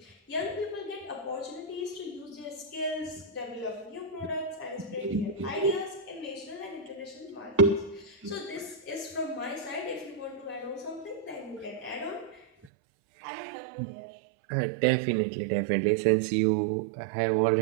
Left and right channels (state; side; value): drops out; left; at 12.7 s